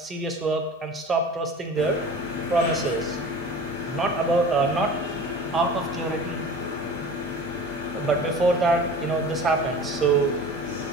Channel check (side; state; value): both; normal; correlation 0.39